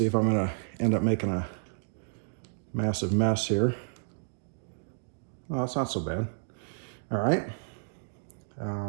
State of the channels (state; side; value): silent; left; digital silence